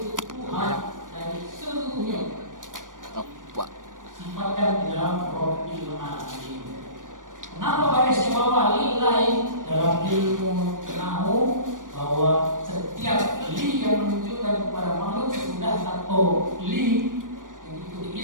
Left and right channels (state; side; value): late; left; 0.88 ms